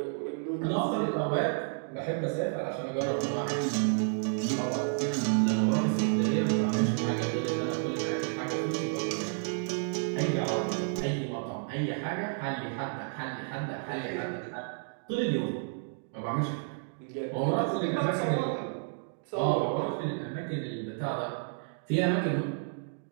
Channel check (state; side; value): silent; left; digital silence